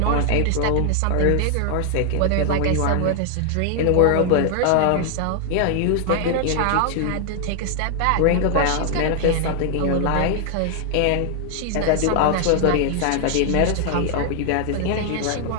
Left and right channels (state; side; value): different; both; correlation 0.00